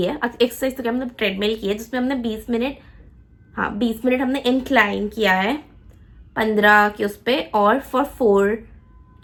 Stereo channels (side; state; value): both; identical; correlation 1.00